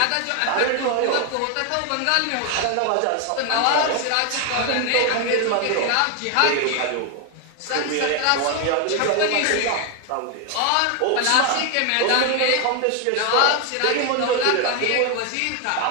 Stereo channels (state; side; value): different; both; correlation 0.00